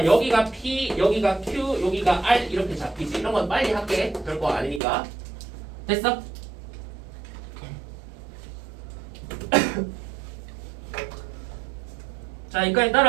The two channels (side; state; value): left; drops out; at 4.8 s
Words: 여기가 P, 여기가 Q, 여기가 R 이렇게 잡히지. 이런 건 빨리 할게. 별거 아니니까. 됐어? 자, 여기까지